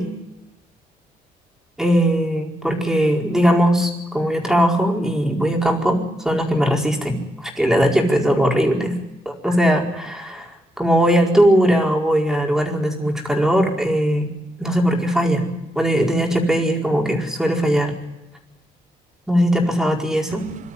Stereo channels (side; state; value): both; normal; correlation 0.82